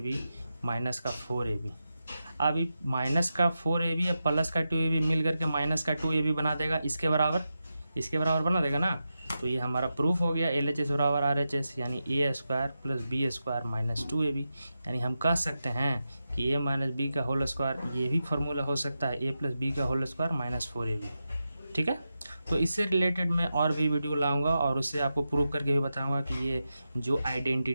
minus का 4ab। अभी माइनस का 4ab या प्लस का 2ab मिल करके माइनस का 2ab बना देगा, इसके बराबर बना देगा ना। तो ये हमारा प्रूफ हो गया LHS बराबर RHS, यानी a² plus b² minus 2ab। यानी हम कह सकते हैं कि a - b का होल स्क्वायर, ये भी फार्मूला हो सकता है a + b का होल स्क्वायर माइनस 4ab, ठीक है। तो इससे रिलेटेड मैं और भी वीडियो लाऊंगा और उससे आपको प्रूव करके भी बताऊंगा कि ये जो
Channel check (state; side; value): inverted; both; correlation -0.89